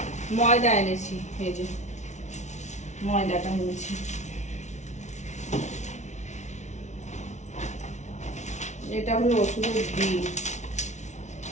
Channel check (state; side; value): late; right; 0.33 ms